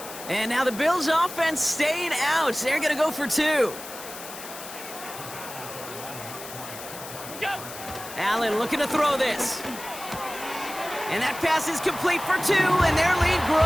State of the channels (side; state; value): left; noise; hiss, 12 dB below the sound